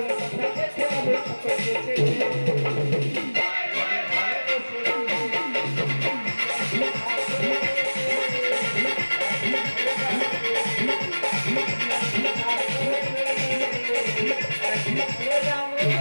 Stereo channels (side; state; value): both; inverted; correlation -1.00